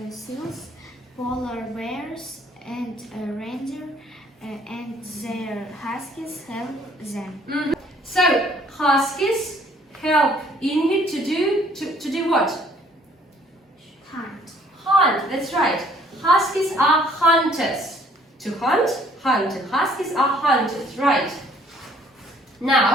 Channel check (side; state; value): both; normal; correlation 0.60